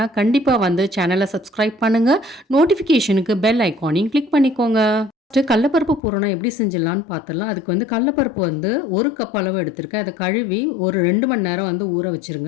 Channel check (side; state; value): right; drops out; at 6.0 s